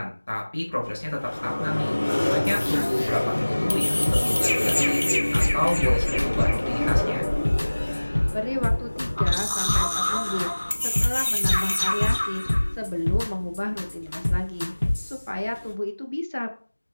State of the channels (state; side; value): inverted; both; correlation -1.00